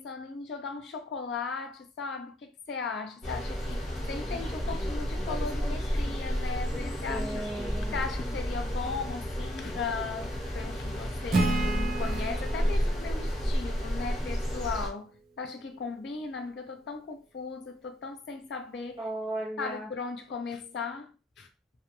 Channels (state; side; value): normal; both; correlation 0.71